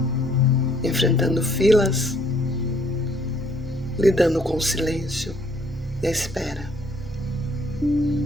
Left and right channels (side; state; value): both; normal; correlation 0.64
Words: enfrentando filas, lidando com o silêncio e a espera.